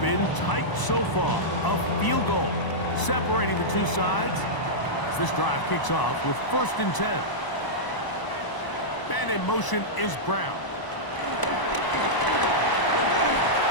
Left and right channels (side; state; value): right; late; 1.0 ms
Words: tight so far. A field goal separating the two sides as this drive kicks off with 1st and 10. And in motion is Brown.